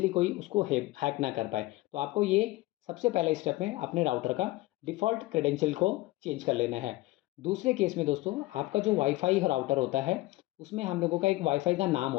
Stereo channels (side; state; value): right; quieter; 19.3 dB